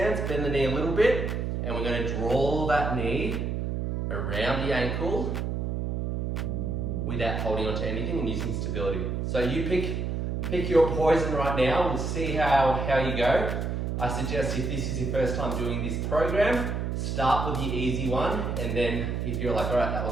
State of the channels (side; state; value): right; noise; hum, 1 dB below the sound